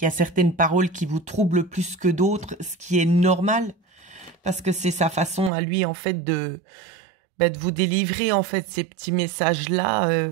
y a certaines paroles qui vous troublent plus que d'autres, ce qui est normal, parce que c'est sa façon à lui, en fait, de vous délivrer, en fait, ces petits messages-là,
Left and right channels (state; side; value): drops out; left; at 5.5 s